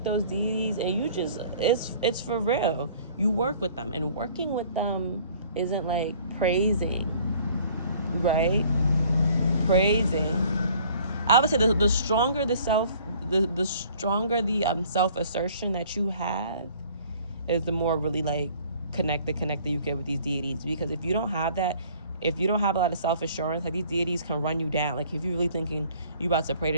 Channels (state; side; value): inverted; both; correlation -0.54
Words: those deities and you just, it's for real. You work with them, and working with them isn't like praising, right? Praising. I would say the stronger the stronger the self assertion that you have, is the more really like connected you get with these deities. Because if you don't have that, if you don't have a lot of self-assurance, like these deities can run you down. Like if you're really thinking you about to pray